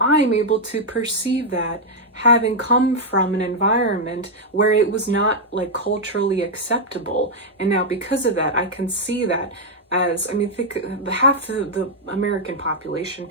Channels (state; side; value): normal; both; correlation -0.02